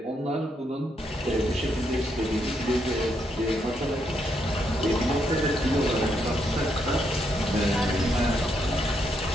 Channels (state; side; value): normal; both; correlation 0.78